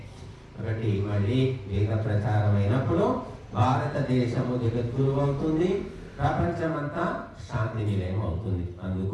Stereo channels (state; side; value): identical; both; correlation 1.00